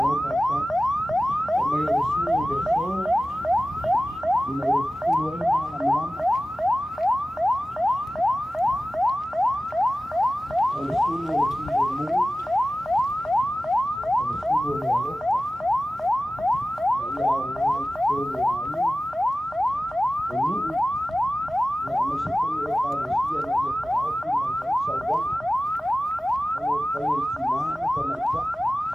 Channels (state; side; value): normal; both; correlation 0.96